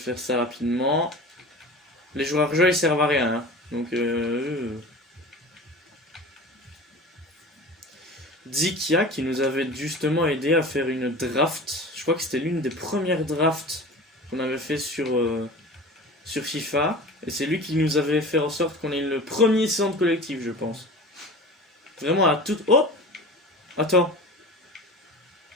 ça rapidement. Les joueurs jeux ils servent à rien, hein. Donc, Zikia qui nous avait justement aidé à faire une draft. Je crois que c'était l'une des premières drafts qu'on avait fait sur FIFA. Et c'est lui qui nous avait fait en sorte qu'on ait le premier centre collectif, je pense. Vraiment à toute... Oh! Attends.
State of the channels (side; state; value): both; normal; correlation 0.36